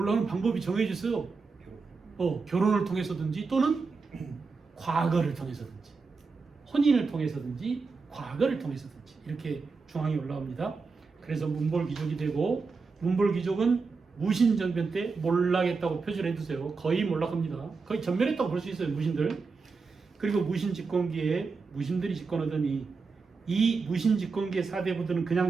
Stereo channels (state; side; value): quieter; left; 4.6 dB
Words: 방법이 정해져 있어요. 결혼을 통해서든지 또는 과거를 통해서든지 혼인을 통해서든지 과거를 통해서든지 이렇게 중앙에 올라옵니다. 그래서 문벌귀족이 되고 문벌귀족은 무신정변 때 몰락했다고 표시를 해두세요. 거의 몰락합니다. 거의 전멸했다고 볼 수 있어요. 무신들. 그리고 무신집권기에 무신들이 집권하더니 이 무신집권기의 사대부들은 그냥